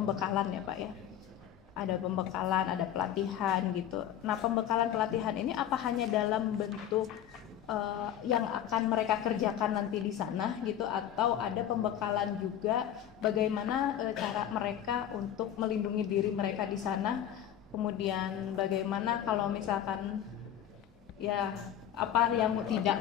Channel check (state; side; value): quieter; right; 10.4 dB